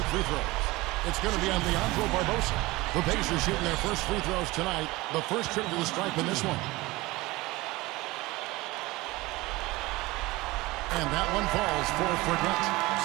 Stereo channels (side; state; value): left; quieter; 20.8 dB